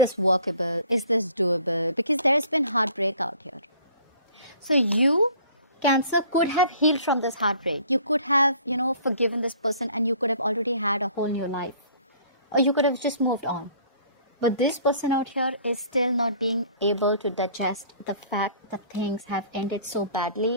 workable? Is this doable? Because there's been heartbreak out here. So you, Cancer, could have healed from this heartbreak. You could have, you know, forgiven this person, and you could have already had a whole new life. Or you could have just moved on. But this person out here is still not being able to digest the fact that things have ended so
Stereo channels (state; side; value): inverted; both; correlation -0.53